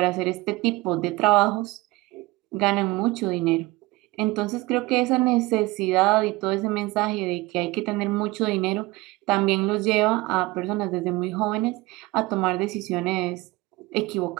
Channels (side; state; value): left; quieter; 20.8 dB